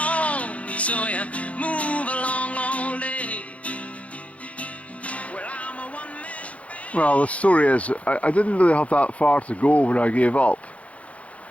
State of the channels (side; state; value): right; late; 0.065 ms